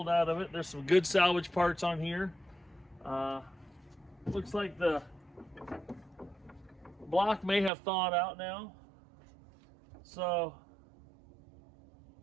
out of it. There's some good salvage parts on here. Looks like the block may have thawed out now. So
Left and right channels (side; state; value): left; drops out; at 7.7 s